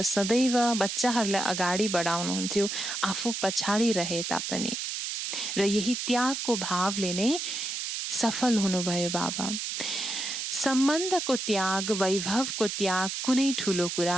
सदैव बच्चाहरूलाई अगाडि बढाउनुहुन्थ्यो, आफू पछाडि रहे तापनि, र यही त्यागको भावले नै सफल हुनुभयो बाबा। सम्बन्धको त्याग, वैभवको त्याग कुनै ठुलो कुरा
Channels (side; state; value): right; noise; hiss, 4 dB below the sound